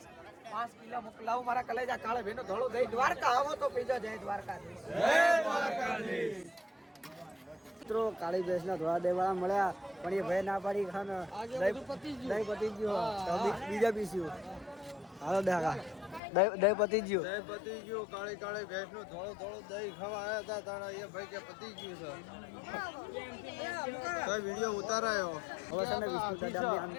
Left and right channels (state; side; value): drops out; right; at 16.2 s